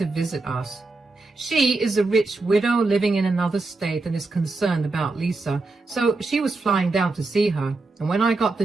visit us. She is a rich widow living in another state and is concerned about Lisa, so she was flying down to see her. And when I got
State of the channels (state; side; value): quieter; left; 3.5 dB